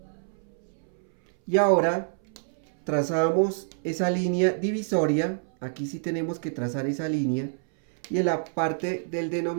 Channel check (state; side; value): silent; left; 60 dB below the other